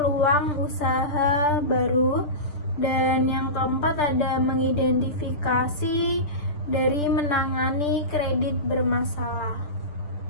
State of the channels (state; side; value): late; right; 6.7 ms